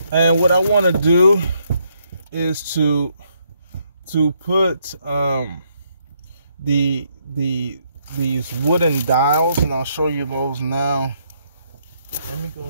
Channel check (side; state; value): both; inverted; correlation -0.73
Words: And what I want to do is to put these wooden dials, and I'll show you those now. Let me